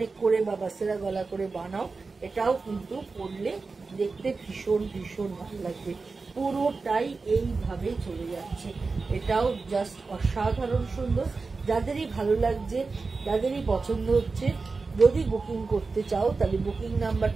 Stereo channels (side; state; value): left; quieter; 4.1 dB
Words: করে বা বাসেরা গলা করে বানাও, এটাও কিন্তু পরলে দেখতে ভীষণ ভীষণ ভালো লাগবে। পুরোটাই এইভাবে চলে যাচ্ছে, এটাও জাস্ট অসাধারণ সুন্দর। যাদেরই ভালো লাগছে, যাদেরই পছন্দ হচ্ছে, যদি বুকিং করতে চাও তাহলে বুকিং